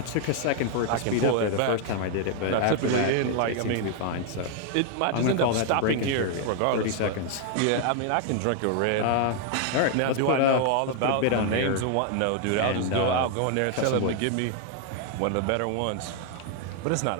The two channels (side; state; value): both; different; correlation 0.00